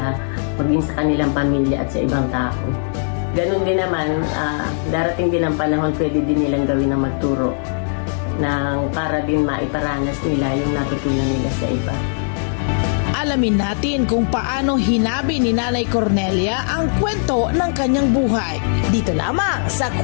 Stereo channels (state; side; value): silent; right; digital silence